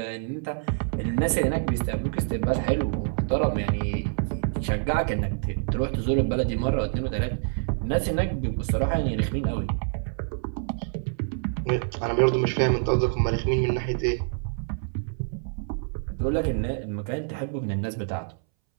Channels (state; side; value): silent; left; 60 dB below the other